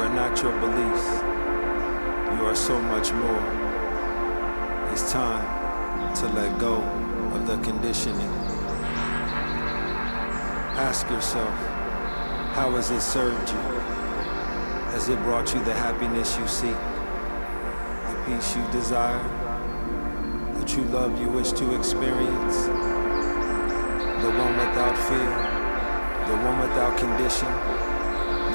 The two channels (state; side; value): inverted; both; correlation -1.00